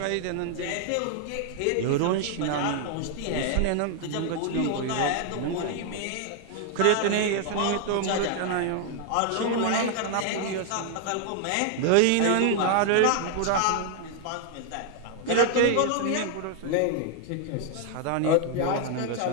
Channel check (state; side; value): different; both; correlation 0.00